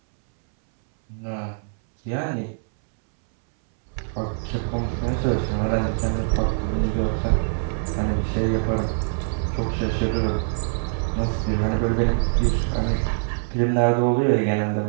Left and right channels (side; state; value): left; silent; 63 dB below the other